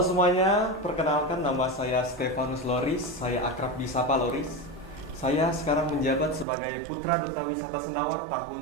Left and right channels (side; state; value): left; drops out; at 6.5 s